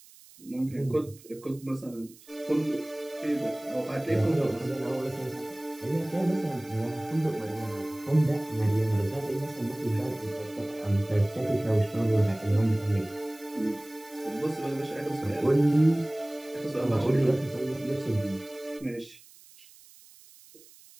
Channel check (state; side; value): noise; right; hiss, 23 dB below the sound